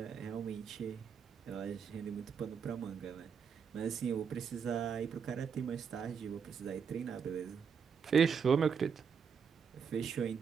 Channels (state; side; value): quieter; left; 6.7 dB